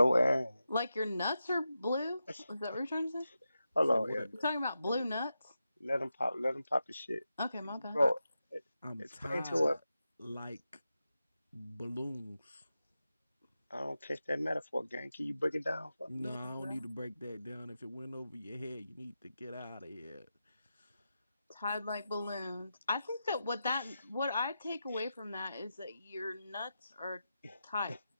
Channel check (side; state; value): both; inverted; correlation -0.90